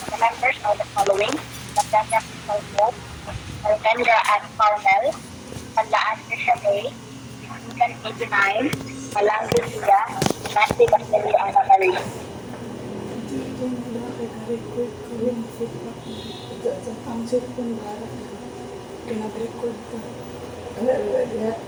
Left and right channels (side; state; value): both; identical; correlation 1.00